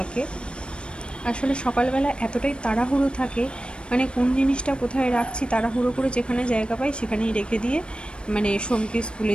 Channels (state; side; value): late; right; 0.056 ms